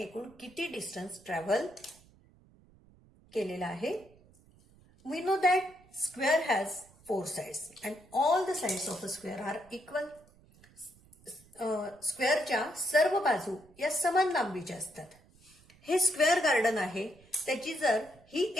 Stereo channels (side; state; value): right; noise; rumble, 28 dB below the sound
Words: एकूण किती डिस्टन्स ट्रॅव्हल केलेला आहे? We know that square has 4 sides and all the sides of a square are equal. स्क्वेअरच्या सर्व बाजू या समान लांबीच्या असतात. हे स्क्वेअर गार्डन आहे. त्याची जर ही